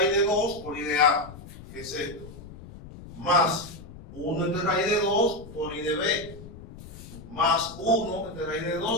de 2 por I de A, que es esto, más 1 de raíz de 2 por I de B, más 1 de raíz de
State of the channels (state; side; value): noise; left; rumble, 16 dB below the sound